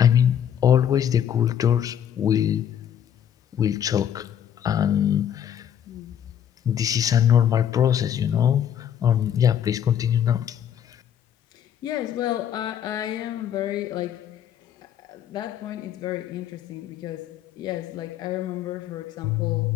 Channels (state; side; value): quieter; right; 9.5 dB